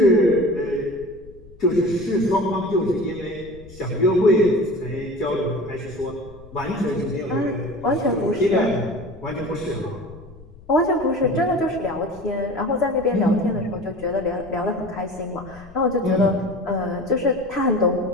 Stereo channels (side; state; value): left; noise; rumble, 21 dB below the sound